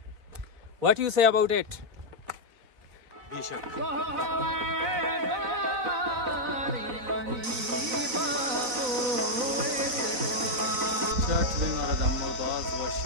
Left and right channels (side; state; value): left; late; 4.0 ms